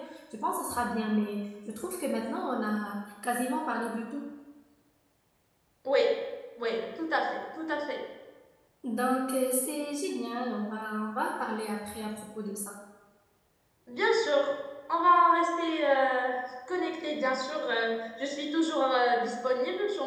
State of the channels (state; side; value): identical; both; correlation 1.00